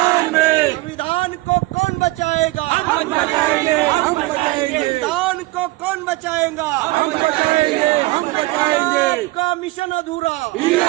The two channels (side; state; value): left; quieter; 21.1 dB